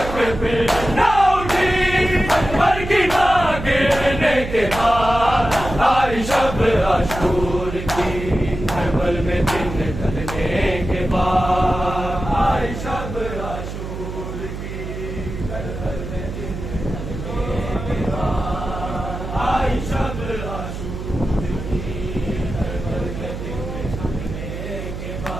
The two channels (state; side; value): noise; right; hum, 8 dB below the sound